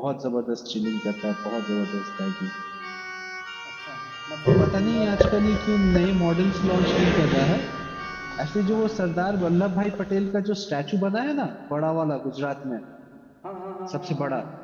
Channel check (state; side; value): identical; both; correlation 1.00